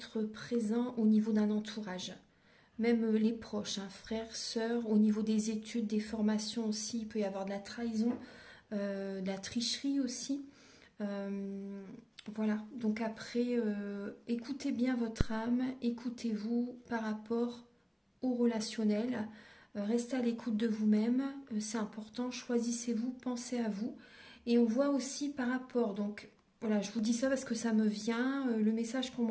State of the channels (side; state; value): both; identical; correlation 1.00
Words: présents au niveau d'un entourage. Même les proches, hein, frères, sœurs, au niveau des études, des formations aussi, il peut y avoir de la trahison, de la tricherie aussi. Voilà, donc après, écoutez bien votre âme, écoutez-vous par rapport au relationnel, restez à l'écoute de vous-même, c'est important, choisissez-vous, pensez à vous. Et on voit aussi par rapport, donc voilà, je vous dis ça parce que ça me vient, le message qu'on